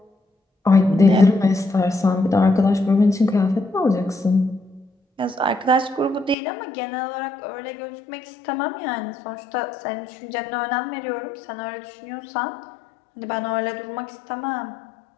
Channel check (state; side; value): drops out; right; at 6.4 s